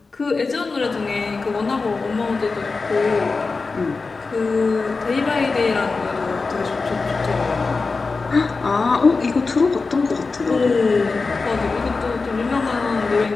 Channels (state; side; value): quieter; right; 4.1 dB